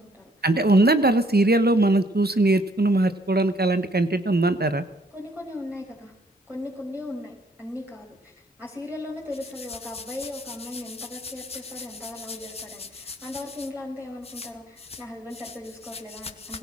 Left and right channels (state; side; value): normal; both; correlation 0.65